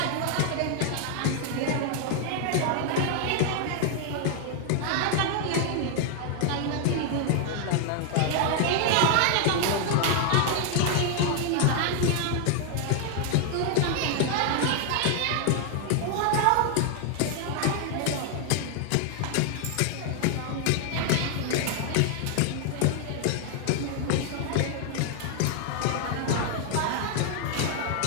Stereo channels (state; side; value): different; both; correlation 0.00